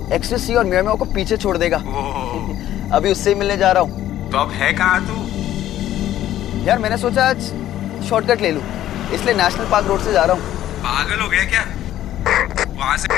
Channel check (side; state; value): right; quieter; 12.8 dB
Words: एक्सटेसी और मियामी को पीछे छोड़ देगा। अभी उससे ही मिलने जा रहा हूँ। तो अब है कहाँ तू? यार मैंने सोचा आज शॉर्टकट ले लूँ, इसलिए नेशनल पार्क रोड से जा रहा हूँ। पागल हो गया क्या? वहां से